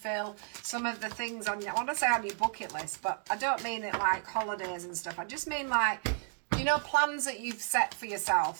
some of the things on your, I want to say on your bucket list, but I don't mean it like holidays and stuff. I just mean like, plans that you've set for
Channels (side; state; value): left; silent; 56 dB below the other